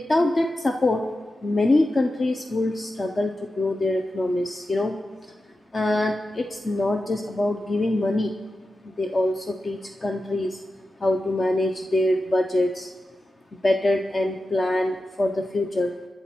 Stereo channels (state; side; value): normal; both; correlation 0.91